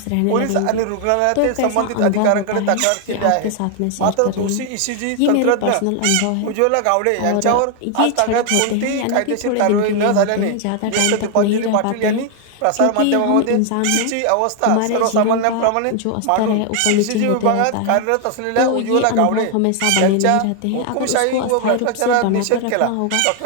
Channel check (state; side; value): different; both; correlation 0.00